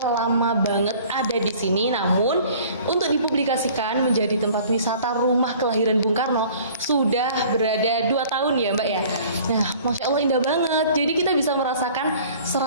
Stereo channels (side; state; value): both; inverted; correlation -0.50